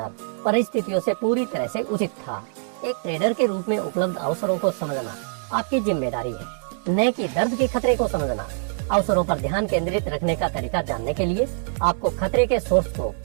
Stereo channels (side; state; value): left; silent; digital silence